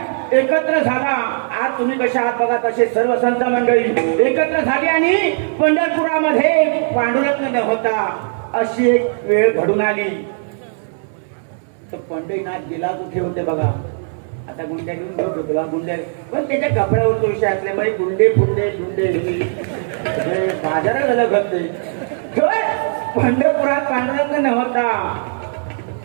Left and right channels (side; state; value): left; silent; digital silence